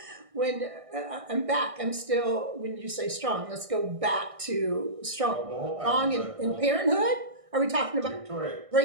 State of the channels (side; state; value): left; late; 1.6 ms